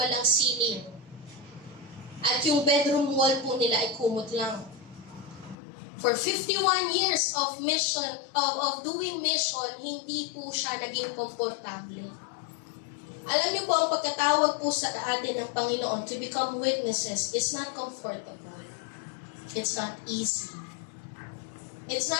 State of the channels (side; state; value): right; drops out; at 5.6 s